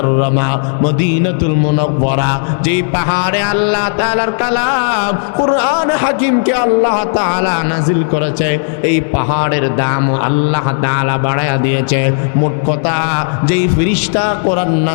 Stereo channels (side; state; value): right; silent; digital silence